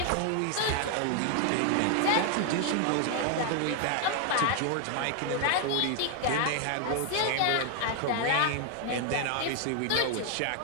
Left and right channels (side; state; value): both; different; correlation 0.00